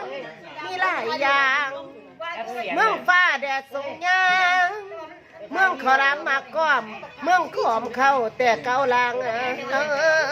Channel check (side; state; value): both; identical; correlation 1.00